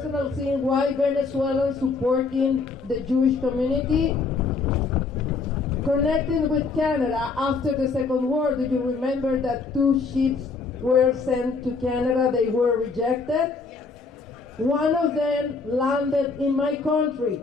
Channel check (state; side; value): quieter; right; 4.4 dB